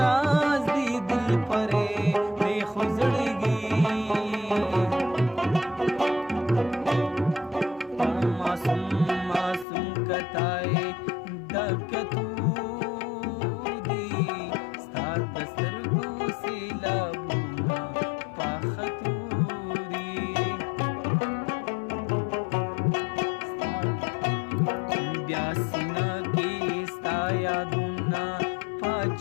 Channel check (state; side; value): drops out; right; at 9.7 s